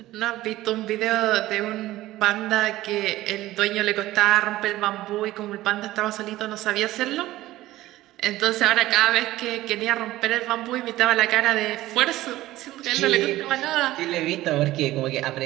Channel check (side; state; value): left; quieter; 16.2 dB